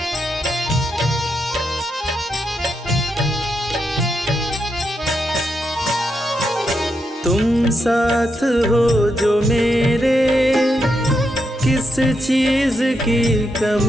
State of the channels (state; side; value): normal; both; correlation 0.83